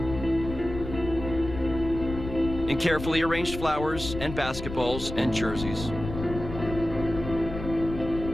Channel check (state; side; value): noise; left; rumble, 8 dB below the sound